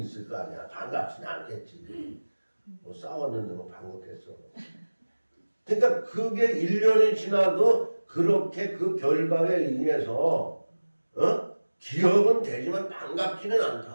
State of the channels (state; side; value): inverted; both; correlation -1.00